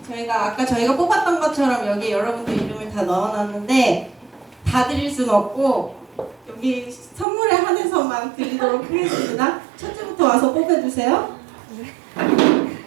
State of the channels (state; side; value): drops out; left; at 7.2 s